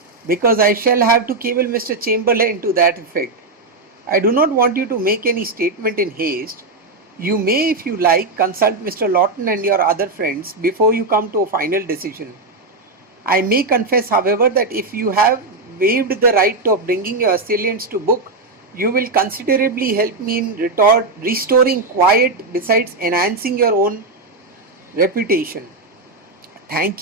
"because I shall have to cable Mr. Chamberlain to that effect. I do not want you to make any statement in haste. You may, if you like, consult Mr. Lawton and your other friends before you come to a final decision. I may confess, however, that if you have waived the right of bringing your assailants to book, you will considerably help me in restoring quiet besides enhancing your own reputation. Thank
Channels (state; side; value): quieter; left; 3.4 dB